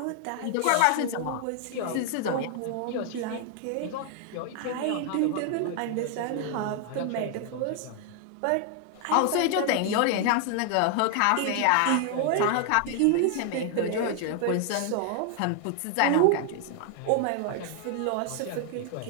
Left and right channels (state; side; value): different; both; correlation 0.00